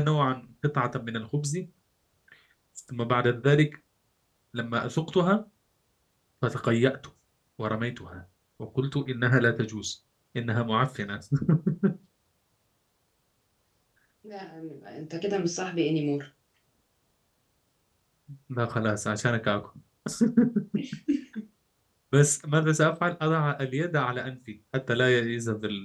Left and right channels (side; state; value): both; identical; correlation 1.00